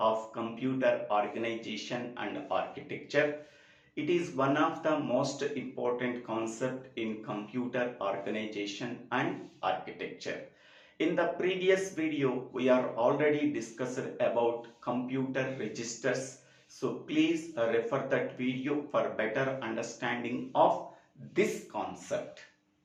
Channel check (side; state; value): both; identical; correlation 1.00